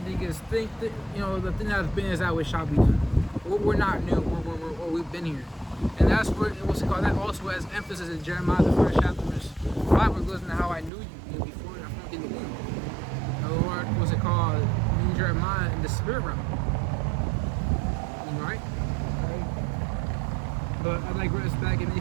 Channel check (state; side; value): drops out; left; at 10.9 s